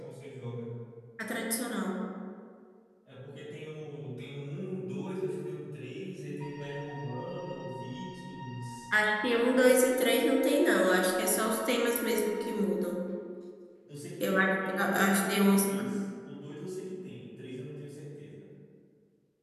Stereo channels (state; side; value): identical; both; correlation 1.00